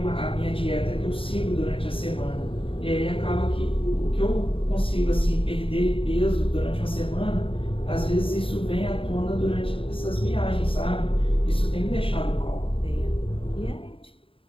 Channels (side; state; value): right; late; 0.26 ms